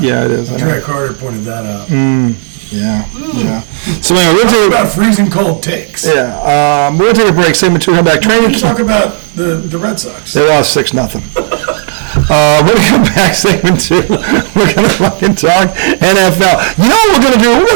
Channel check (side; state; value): left; silent; digital silence